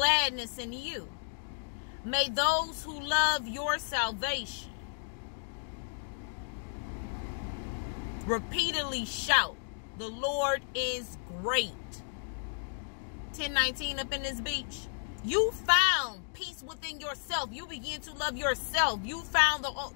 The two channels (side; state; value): right; silent; digital silence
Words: in you. May those who love your salvation repeatedly shout, the Lord is great. 10:19 up in this beach. You found peace within yourself. You begin to love yourself. You found